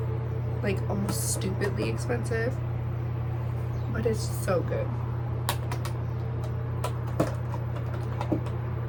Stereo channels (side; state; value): both; identical; correlation 1.00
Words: Like, almost stupidly expensive. But it's so good.